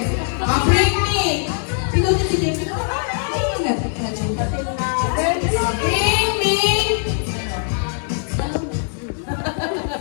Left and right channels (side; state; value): right; silent; 58 dB below the other